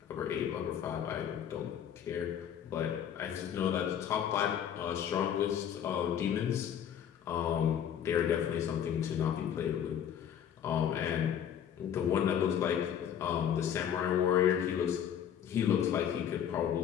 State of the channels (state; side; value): quieter; right; 9.2 dB